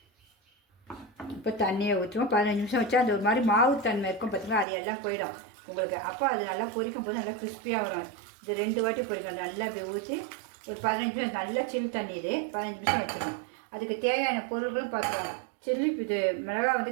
இப்போ தண்ணியை ஊற்றுவோம். 15 நிமிஷம் வச்சா அந்த ஒரு மாதிரி மாவு தன்மை இருக்கும் பார்த்தீங்களா, அது எல்லாம் போயிடும் உங்களுக்கு. அப்போ அது நல்லா பொரிக்கும் போது நல்லா கிறிஸ்பியாக வரும். இது 2 வாட்டி பொரிக்கணும். நல்லா அப்படி ஊற்றி ஒரு 15 நிமிஷம் நல்லா சில் தண்ணி. இது 15 நிமிஷம் வச்சுருவோம். அதுக்கு தேவையான பொருள்களும் பார்த்துருவோம். சில்லி இது மிளகா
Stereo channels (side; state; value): left; drops out; at 4.7 s